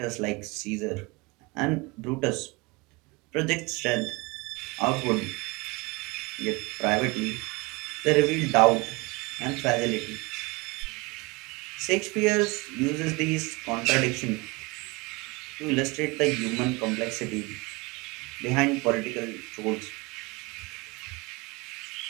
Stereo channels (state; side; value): quieter; left; 25.4 dB